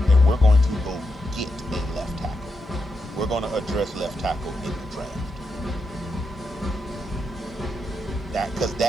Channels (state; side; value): normal; both; correlation 0.85